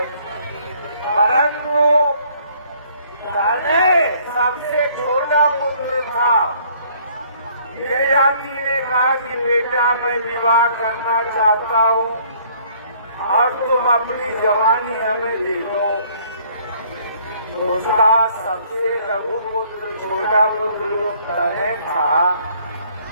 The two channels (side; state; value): both; inverted; correlation -0.60